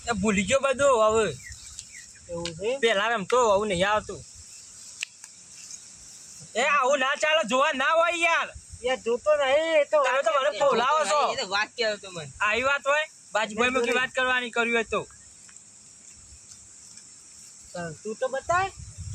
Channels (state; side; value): identical; both; correlation 1.00